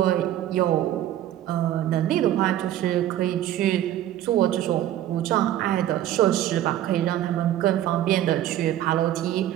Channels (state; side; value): quieter; left; 12.4 dB